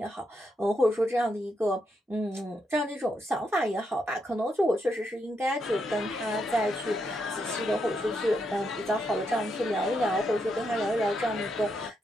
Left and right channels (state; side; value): normal; both; correlation 0.81